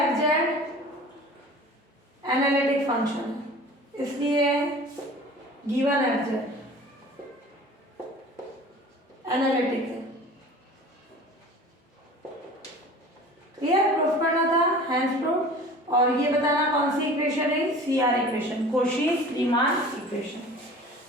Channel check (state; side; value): normal; both; correlation 0.42